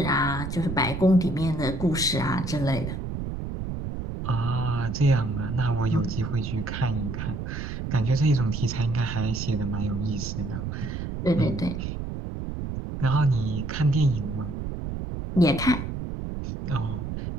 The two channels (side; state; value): right; noise; rumble, 5 dB below the sound